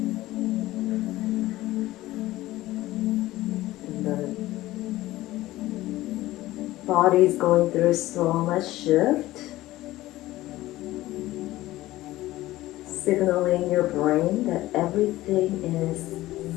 Body's going through so much shift, signaling your brain that everything is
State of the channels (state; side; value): quieter; right; 16.7 dB